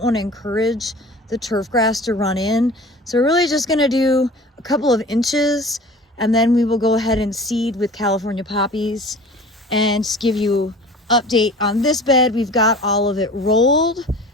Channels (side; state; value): both; normal; correlation 0.42